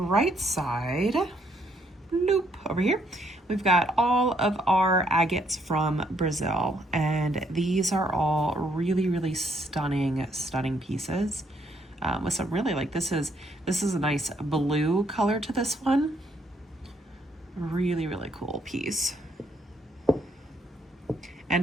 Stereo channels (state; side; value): normal; both; correlation 0.71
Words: side, loop over here, we've got all of our agates from Brazil. And these are all really, really stunning pieces. With some really this is a nice blue color to this one. Really, really cool piece.